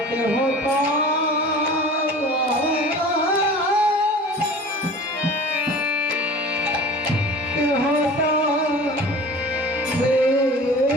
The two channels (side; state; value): both; normal; correlation 0.41